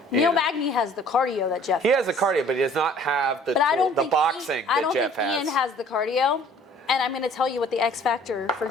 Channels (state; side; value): normal; both; correlation 0.53